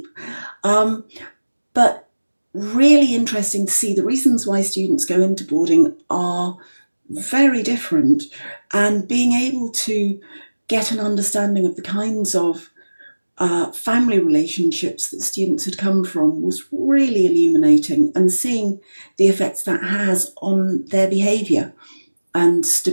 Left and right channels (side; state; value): both; inverted; correlation -1.00